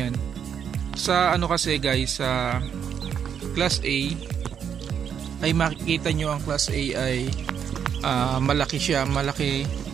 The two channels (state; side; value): quieter; left; 8.0 dB